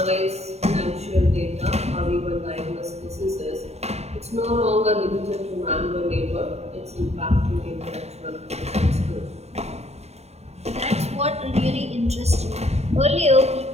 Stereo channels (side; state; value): left; late; 0.31 ms